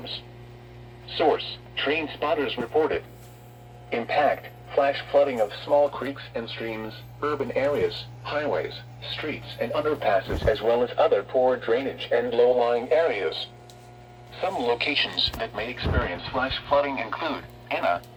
Source: trained spotters reported. Impact: flash flooding of small creeks and streams, urban areas, highways, streets and underpasses, as well as other poor drainage and low-lying areas. Some locations that may experience flash flooding include Anna,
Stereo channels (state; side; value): identical; both; correlation 1.00